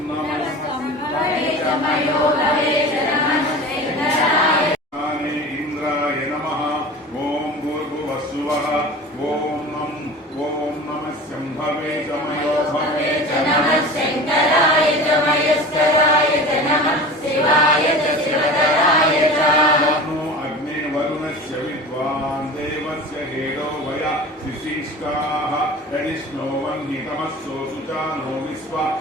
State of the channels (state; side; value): normal; both; correlation 0.36